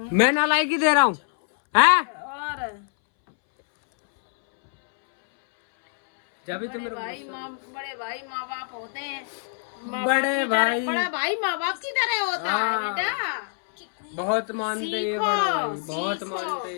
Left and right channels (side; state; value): right; silent; 62 dB below the other